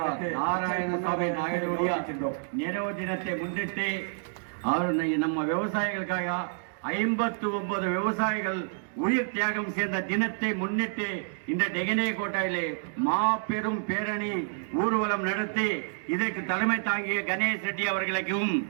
நாராயணசாமி நாயுடைய நினைவு தினத்தை முன்னிட்டு நம்ம விவசாயிகளுக்காக 59 விவசாயிகள் உயிர் தியாகம் செய்த தினத்தை முன்னிட்டு இந்த டெகனே கோட்டையிலே மாபெரும் பேரணி ஊர்வலம் நடத்தி இதற்கு தலைமை தாங்கிய கணேஷ் ரெட்டி அவர்களுக்கும்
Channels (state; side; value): silent; left; digital silence